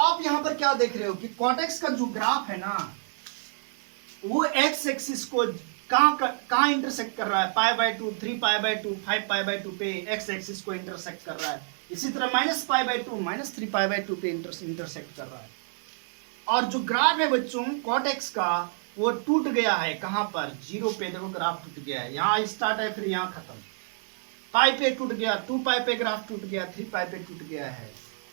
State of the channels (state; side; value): silent; left; digital silence